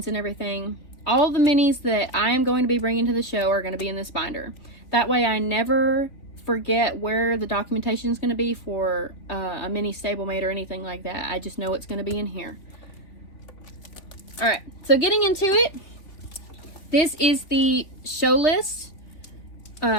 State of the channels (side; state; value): right; late; 3.2 ms